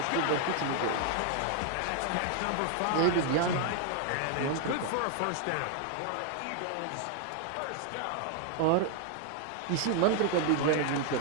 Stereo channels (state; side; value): different; both; correlation 0.00